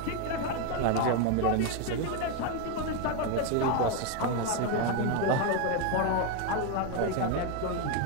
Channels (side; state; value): both; different; correlation 0.02